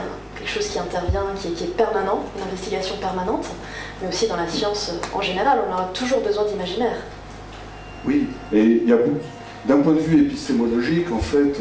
quelque chose qui intervient, qui est permanent, une investigation permanente, mais aussi dans la science en général, on aura toujours besoin d'imaginaire. Oui, et il y a d'un point de vue épistémologique, en fait,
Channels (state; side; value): identical; both; correlation 1.00